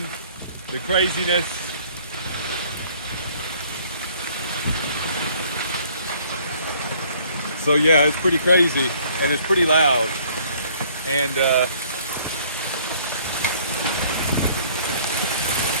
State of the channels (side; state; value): both; inverted; correlation -0.58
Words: the craziness. So yeah, it's pretty crazy and it's pretty loud. And